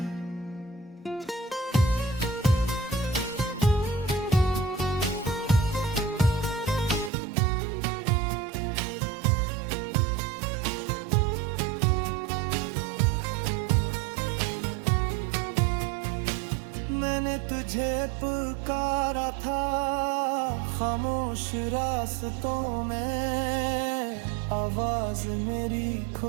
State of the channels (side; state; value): left; drops out; at 7.1 s